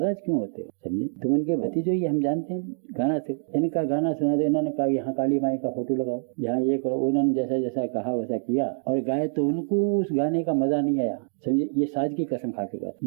क्यों होते हो? समझे, तुम उनके भतीजे ही, हम जानते हैं गाना से। इनका गाना सुना तो इन्होंने कहा यहाँ काली माई का फोटो लगाओ, यहाँ ये करो। उन्होंने जैसा जैसा कहा वैसा किया और गाए, तो उनको उस गाने का मजा नहीं आया। समझे, ये साज की कसम खा के गाते,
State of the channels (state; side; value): silent; left; digital silence